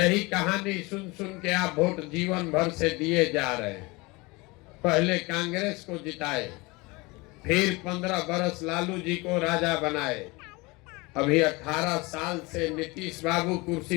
कहानी सुन सुन के आप वोट जीवन भर से दिए जा रहे हैं। पहले कांग्रेस को जिताए, फिर 15 बरस लालू जी को राजा बनाए, अभी 18 साल से नीतीश बाबू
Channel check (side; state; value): right; quieter; 24.7 dB